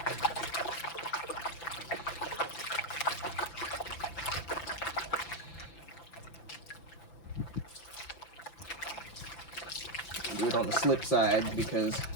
Do it on the slip side because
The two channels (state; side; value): late; right; 5.9 ms